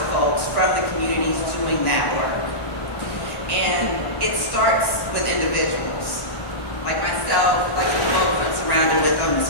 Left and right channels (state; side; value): late; right; 1.1 ms